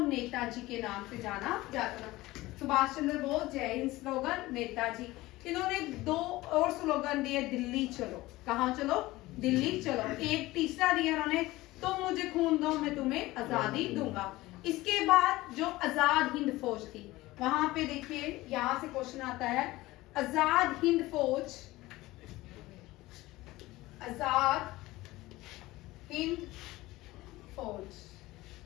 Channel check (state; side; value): quieter; right; 18.7 dB